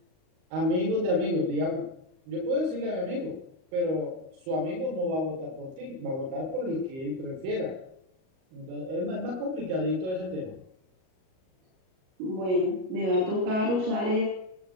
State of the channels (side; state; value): left; late; 38 ms